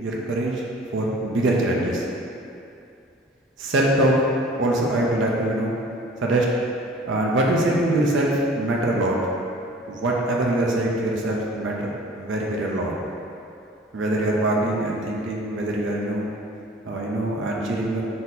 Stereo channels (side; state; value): both; normal; correlation 0.47